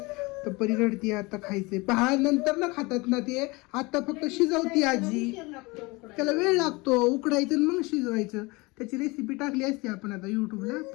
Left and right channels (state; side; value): quieter; right; 24.7 dB